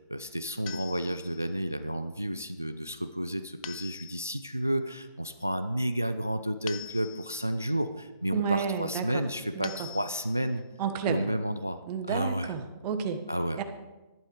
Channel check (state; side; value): inverted; both; correlation -0.78